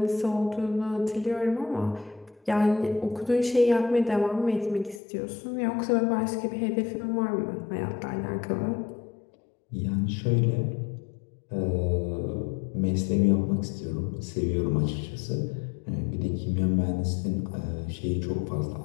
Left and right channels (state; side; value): drops out; right; at 5.0 s